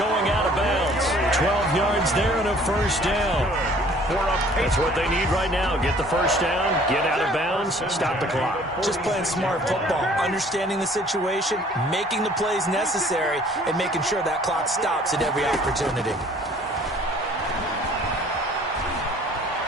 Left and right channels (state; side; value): normal; both; correlation 0.54